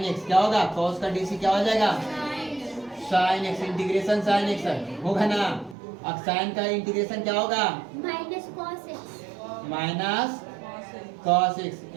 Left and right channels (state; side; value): drops out; left; at 5.8 s